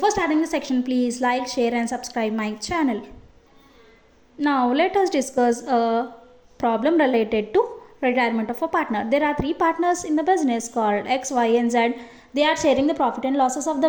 starting the section, please like, share and subscribe my channel. Now let us discuss a problem related to retirement of a partner. There are three partners in the business called X, Y and Z. They are sharing the profit and losses of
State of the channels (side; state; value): both; identical; correlation 1.00